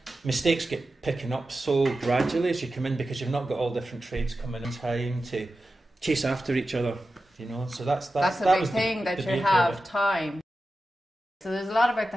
Mistakes get picking up so gradually as you come in because you've not got all different trades coming in time to chase after each other, you know. So that's the big thing, that you have time. So there's a lot about the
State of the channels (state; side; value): normal; both; correlation 0.92